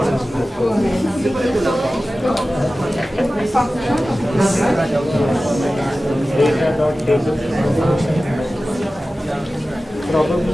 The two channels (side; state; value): both; normal; correlation 0.95